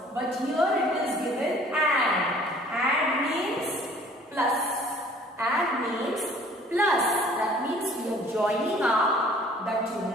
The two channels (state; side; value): normal; both; correlation 0.53